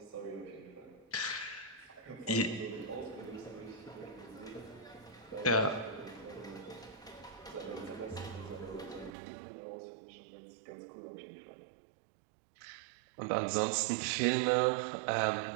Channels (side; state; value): left; drops out; at 9.1 s